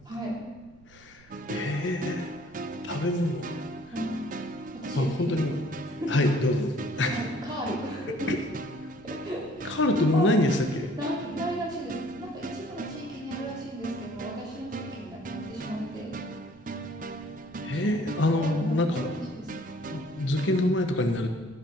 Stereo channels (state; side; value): noise; right; rumble, 25 dB below the sound